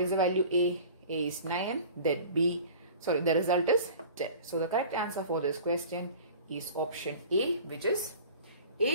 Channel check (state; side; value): inverted; both; correlation -0.42